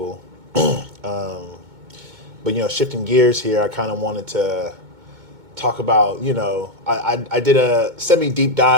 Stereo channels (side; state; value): left; late; 2.2 ms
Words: But shifting gears here, I kind of wanted to talk about, I did a semi deep